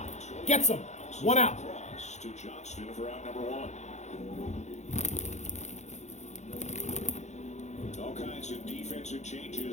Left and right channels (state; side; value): late; right; 0.33 ms